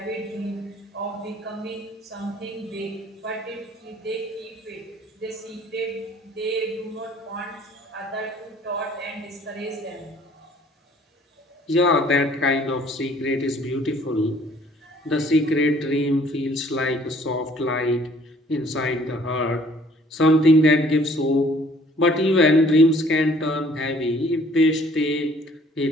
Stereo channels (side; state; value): both; normal; correlation 0.58